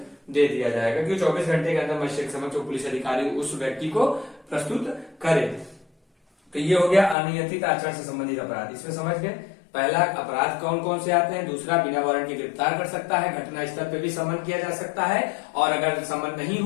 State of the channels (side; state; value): right; drops out; at 7.2 s